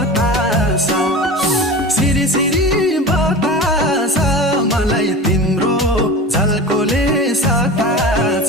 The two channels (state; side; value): normal; both; correlation 0.32